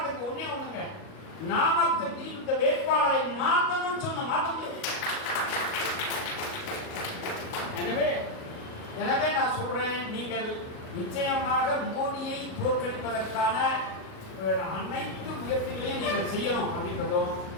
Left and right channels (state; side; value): late; right; 38 ms